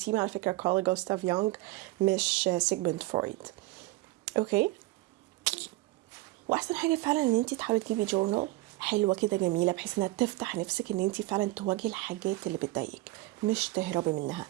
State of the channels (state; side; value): quieter; left; 19.0 dB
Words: على فكره كارل جوستاف يونغ مش سيجموند فرويد. اوكي، واحسن حاجه فعلا ان انت تحاولي تجيبي جورنال حلوه كده جميله بحيث انها تفتح نفسك ان انت فعلا تواجهي الحاجات اللي بتضايقك مش تهربي منها.